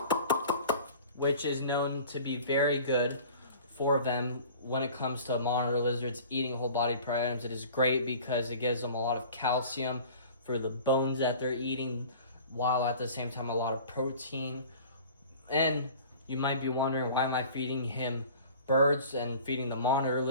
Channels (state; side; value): inverted; both; correlation -0.43